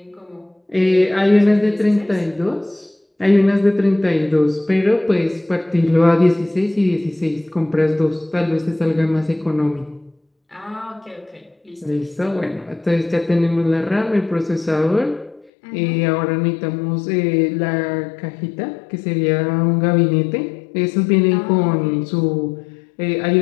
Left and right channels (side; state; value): right; drops out; at 15.5 s